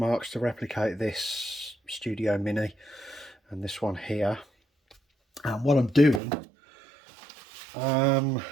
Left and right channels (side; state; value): left; drops out; at 6.2 s